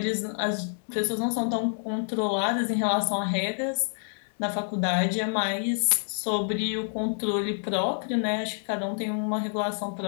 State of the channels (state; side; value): silent; right; digital silence